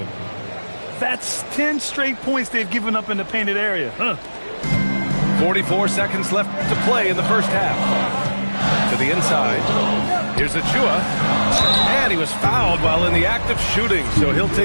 That's 10 straight points they've given up in the painted area. 44 seconds left to play in the first half. To the inside. Here's Achua. And he was fouled while in the act of shooting, so he'll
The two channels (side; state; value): both; inverted; correlation -1.00